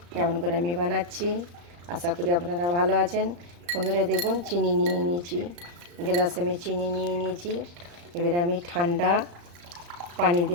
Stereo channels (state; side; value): late; left; 35 ms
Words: কেমন করে আমি বানাচ্ছি। আশা করি আপনারা ভালো আছেন। বন্ধুরা দেখুন, চিনি নিয়ে নিয়েছি, গ্লাসে আমি চিনি নিয়ে নিয়েছি। এবার আমি ঠান্ডা পানি